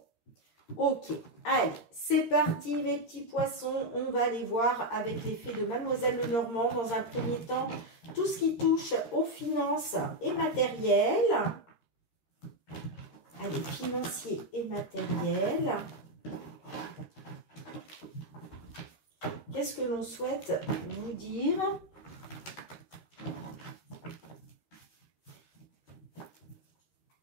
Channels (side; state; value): right; late; 13 ms